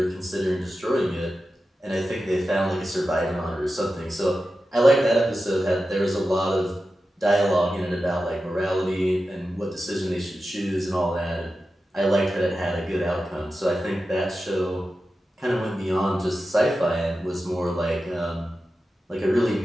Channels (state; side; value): normal; both; correlation 0.92